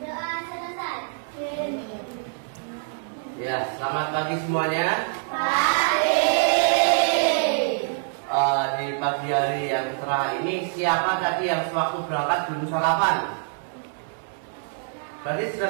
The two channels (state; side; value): silent; left; 62 dB below the other